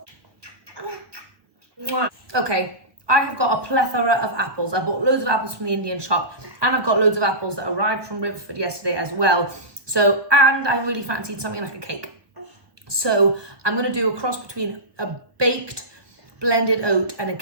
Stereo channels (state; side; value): late; left; 1.1 ms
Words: Okay, I have got a plethora of apples. I bought loads of apples from the Indian shop and I've got loads of apples that arrived from Riverford yesterday as well. So, and I really fancied something like a cake. So I'm going to do a cross between a baked blended oat and a